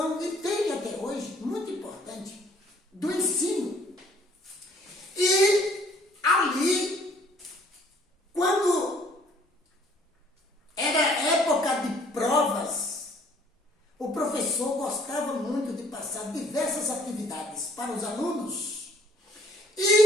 e tem até hoje, muito importante, do ensino. E ali, quando era época de provas, o professor gostava muito de passar diversas atividades para os alunos.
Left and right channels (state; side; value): normal; both; correlation 0.60